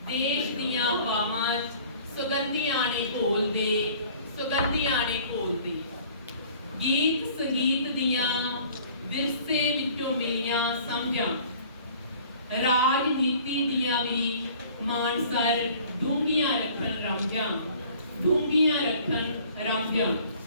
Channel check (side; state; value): both; inverted; correlation -0.51